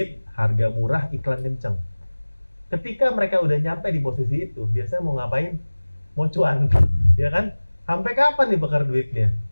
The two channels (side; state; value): both; inverted; correlation -1.00